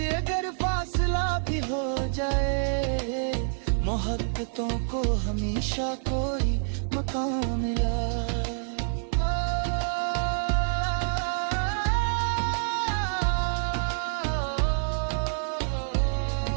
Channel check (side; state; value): left; silent; 58 dB below the other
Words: अगर फासला भी हो जाए, मोहब्बतों को हमेशा कोई मकाम मिला।